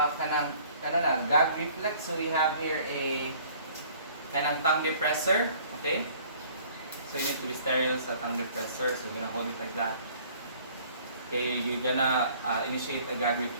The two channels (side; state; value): both; inverted; correlation -0.54